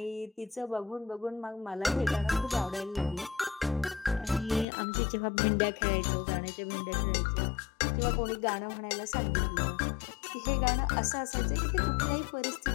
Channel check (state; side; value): drops out; right; at 4.7 s